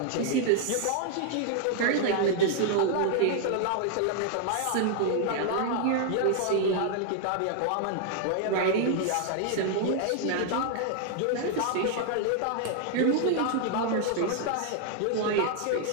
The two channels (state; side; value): different; both; correlation 0.00